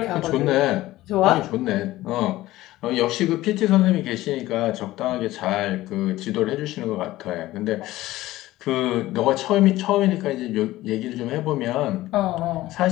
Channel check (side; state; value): right; quieter; 16.6 dB